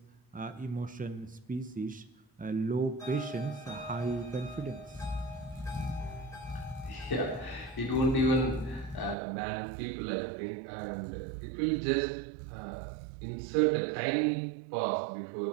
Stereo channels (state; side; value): drops out; left; at 9.2 s